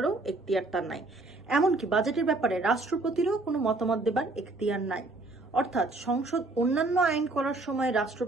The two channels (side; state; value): left; quieter; 3.1 dB